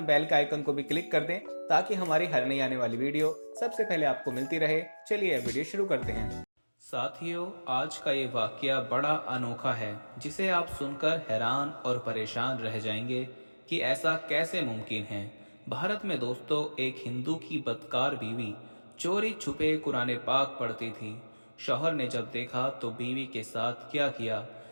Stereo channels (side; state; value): both; inverted; correlation -1.00